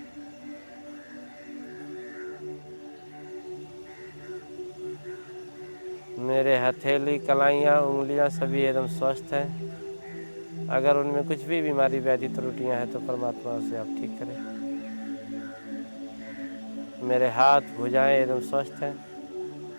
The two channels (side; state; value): both; inverted; correlation -1.00